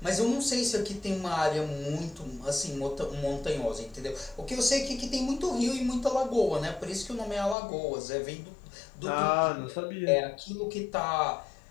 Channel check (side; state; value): right; drops out; at 7.6 s